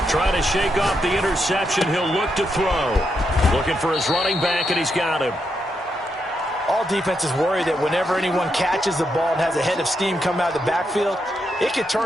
Trying to shake off the interception. He'll look to throw. Looking for his running back, and he's got him. All defenses worry that whenever anyone catches the ball and has a head of steam come out of the backfield, it could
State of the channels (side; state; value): both; normal; correlation 0.82